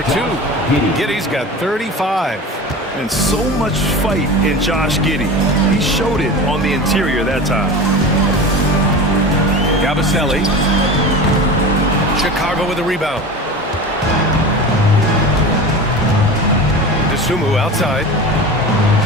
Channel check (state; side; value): normal; both; correlation 0.31